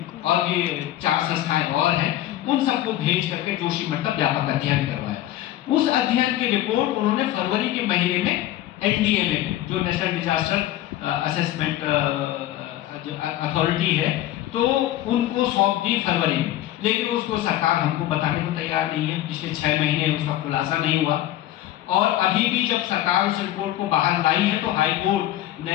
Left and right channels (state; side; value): quieter; right; 13.9 dB